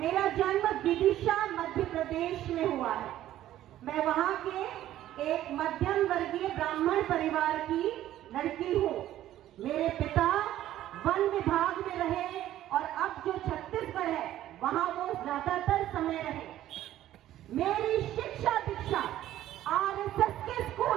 जन्म विदिशा मध्य प्रदेश में हुआ है। मैं वहां के एक मध्यम वर्गीय ब्राह्मण परिवार की लड़की हूँ। मेरे पिता वन विभाग में रहे और अब जो छत्तीसगढ़ है वहां वो ज्यादातर समय रहे। मेरी शिक्षा दीक्षा आरएसएस के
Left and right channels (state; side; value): quieter; left; 13.2 dB